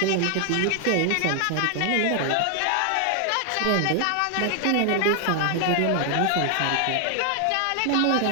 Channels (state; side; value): different; both; correlation 0.00